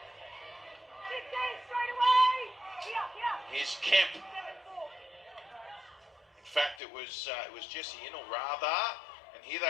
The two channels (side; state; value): right; drops out; at 6.8 s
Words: Here's Kemp. In fact, it was Jesse Innell rather. And here